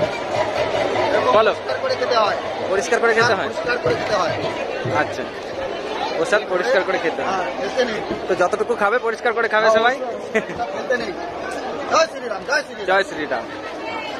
বলো, পরিষ্কার করে খেতে হয়। আচ্ছা, প্রসাদ পরিষ্কার করে খেতে হয়, তো যতটুকু খাবে পরিষ্কার করে খাবে সবাই। জয় শ্রীরাম।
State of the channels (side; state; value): both; identical; correlation 1.00